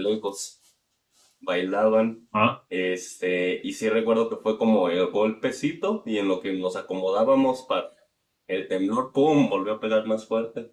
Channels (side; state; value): both; identical; correlation 1.00